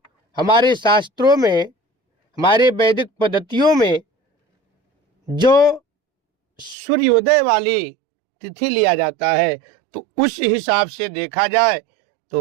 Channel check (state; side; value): drops out; left; at 6.8 s